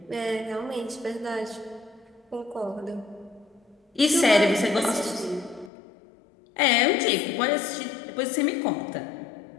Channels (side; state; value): right; drops out; at 5.7 s